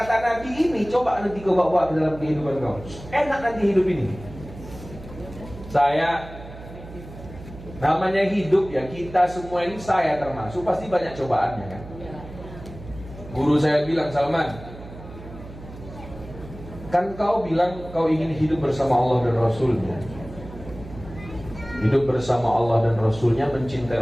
Nabi ini coba nanti kau bawa ke dalam kehidupan kau. Enak nanti hidup ini. Saya, namanya hidup ya, kita semua ini, saya termasuk, pasti banyak cobaannya kan. Guru saya bilang, Salman, kan kau bilang kau ingin hidup bersama Allah dan Rasulnya. Hidup bersama Allah dan Rasulnya, mencintai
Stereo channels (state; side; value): noise; right; hum, 15 dB below the sound